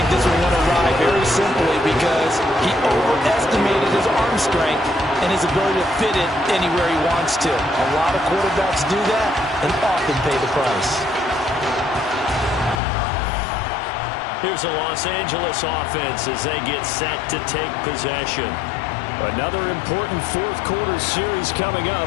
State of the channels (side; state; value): right; drops out; at 12.8 s